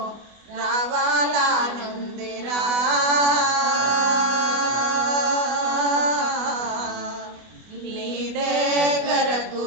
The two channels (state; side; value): late; left; 24 ms